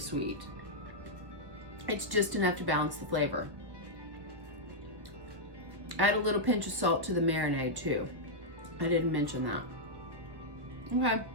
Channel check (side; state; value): left; late; 1.4 ms